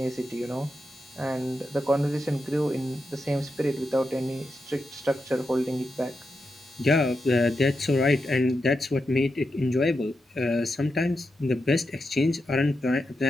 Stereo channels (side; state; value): both; normal; correlation 0.87